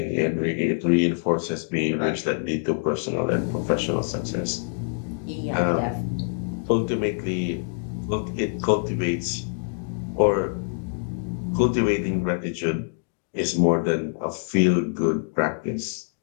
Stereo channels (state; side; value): silent; right; digital silence